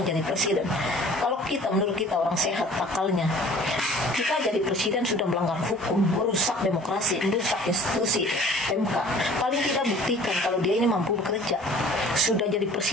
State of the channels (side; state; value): both; normal; correlation 0.49